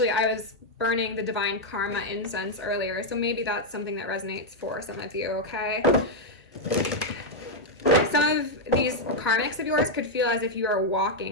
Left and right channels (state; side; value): normal; both; correlation -0.01